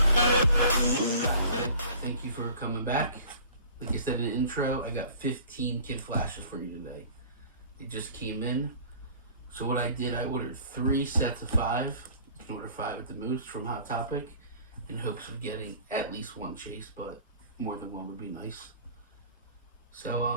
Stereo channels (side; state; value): both; inverted; correlation -0.46